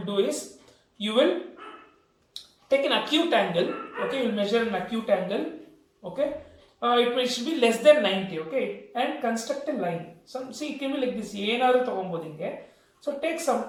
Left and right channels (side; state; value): both; identical; correlation 1.00